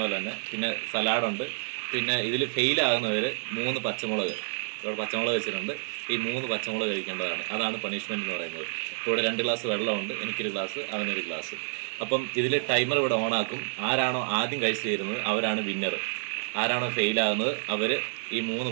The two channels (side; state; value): left; silent; digital silence